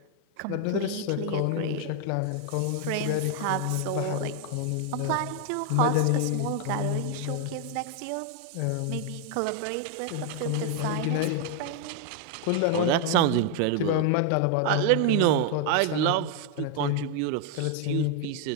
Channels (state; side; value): different; both; correlation 0.00